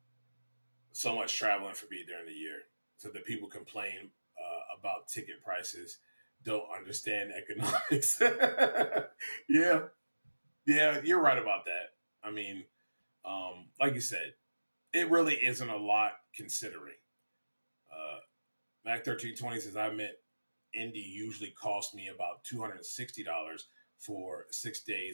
So much traveling for me during the year, so that people complain about ticket prices don't understand economics. Yeah, you're right about that. I mean, like you said, it really isn't a lot considering. Mac 1320 says, I meant Indy usually cost me about $260 for 6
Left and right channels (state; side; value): inverted; both; correlation -1.00